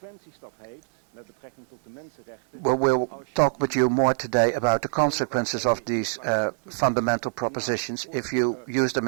we'll talk with you more today about the consequences of these fundamental propositions if you use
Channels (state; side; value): silent; left; 61 dB below the other